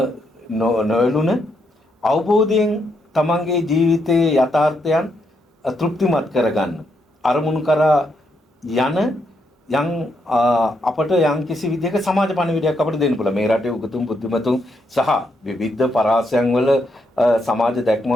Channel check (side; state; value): both; normal; correlation 0.78